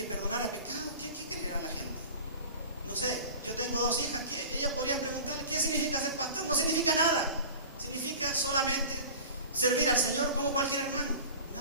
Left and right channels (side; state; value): both; inverted; correlation -0.38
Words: perdonara pecados. ¿Qué creerá la gente? No sé, yo tengo 2 hijas, ellas podrían preguntarle: ¿qué significa ser pastor? No significa nada. Significa solamente servir al Señor como cualquier hermano.